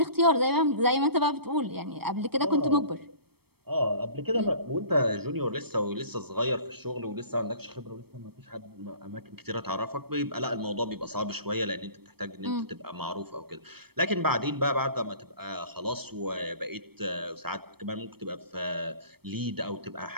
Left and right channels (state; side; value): late; left; 0.96 ms